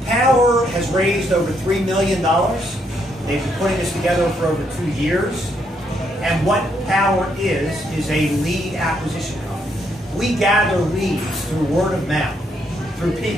Powur has raised over $3 million. They've been putting this together for over 2 years. And what Powur is a lead acquisition company. We gather leads through word of mouth, through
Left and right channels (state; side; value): normal; both; correlation 0.75